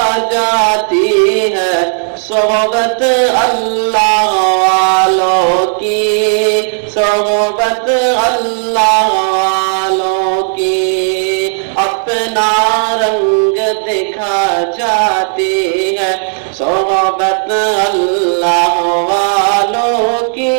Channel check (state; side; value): silent; left; digital silence